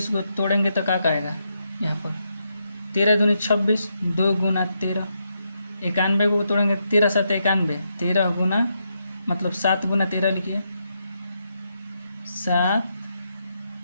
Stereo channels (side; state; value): both; inverted; correlation -0.81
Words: को तोड़ेंगे तो क्या आएगा, यहाँ पर 13 दूनी 26, 2 गुना 13। 91 को तोड़ेंगे, 13 7 91, 13 गुना मतलब 7 गुना 13 लिखिए, 7